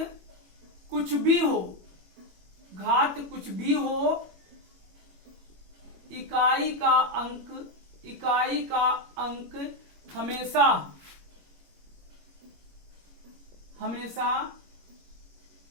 कुछ भी हो, घात कुछ भी हो, इकाई का अंक हमेशा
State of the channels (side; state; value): left; late; 21 ms